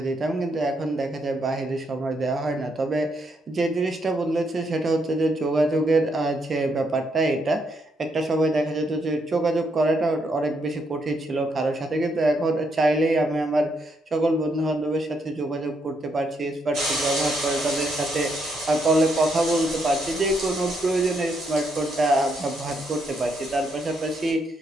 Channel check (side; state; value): both; normal; correlation 0.76